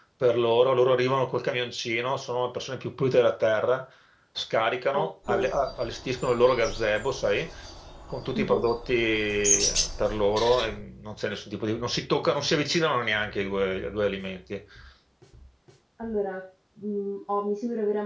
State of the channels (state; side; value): identical; both; correlation 1.00